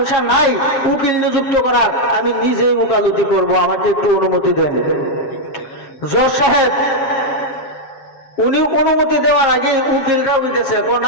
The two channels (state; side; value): late; right; 7.4 ms